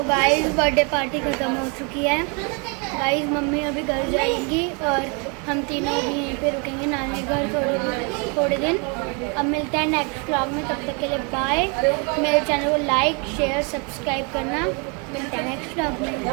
गाइस बर्थडे पार्टी खत्म हो चुकी है। गाइस मम्मी अभी घर जाएंगी और हम तीनों भी यहीं पे रुकेंगे नानी घर थोड़े दिन। अब मिलते हैं नेक्स्ट व्लॉग में, तब तक के लिए बाय। मेरे चैनल को लाइक शेयर सब्सक्राइब करना। मिलते हैं नेक्स्ट व्लॉग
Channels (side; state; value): left; quieter; 34.0 dB